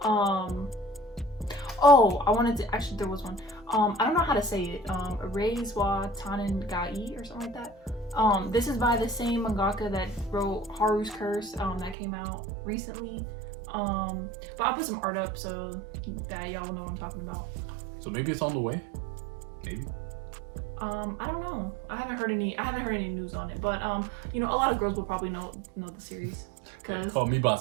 Oh, I wanted to actually. There was one. I don't know how to say it. Reizwa Tannen Gai or something like that. This is by the same mangaka that wrote Haru's Curse. That came out recently. But I'll put some art up so that y'all will know what I'm talking about. So maybe it's on the way. Maybe. I don't know. I haven't heard any news on it. But you know, a lot of girls will probably know the series. Cause caught me by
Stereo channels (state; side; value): drops out; left; at 12.0 s